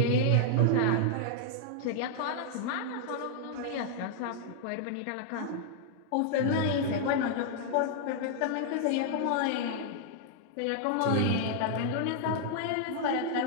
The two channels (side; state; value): both; different; correlation -0.01